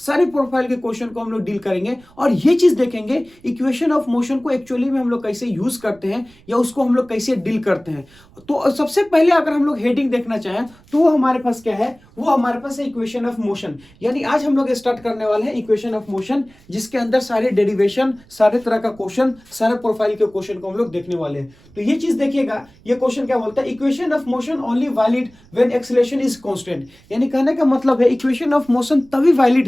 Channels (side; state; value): right; noise; rumble, 27 dB below the sound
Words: प्रोफाइल के क्वेश्चन को हम लोग डील करेंगे और ये चीज देखेंगे इक्वेशन ऑफ मोशन को एक्चुअली में हम लोग कैसे यूज करते हैं या उसको हम लोग कैसे डील करते हैं। तो सबसे पहले अगर हम लोग हेडिंग देखना चाहें तो वो हमारे पास क्या है, वो हमारे पास है इक्वेशन ऑफ मोशन। यानी आज हम लोग स्टार्ट करने वाले हैं इक्वेशन ऑफ मोशन जिसके अंदर सारे डेरिवेशन, सारे तरह का क्वेश्चन, सारे प्रोफाइल के क्वेश्चन को हम लोग देखने वाले हैं। तो ये चीज देखिएगा, ये क्वेश्चन क्या बोलता है, equation of motion only valid when acceleration is constant. यानी कहने का मतलब है इक्वेशन ऑफ मोशन तभी वैलिड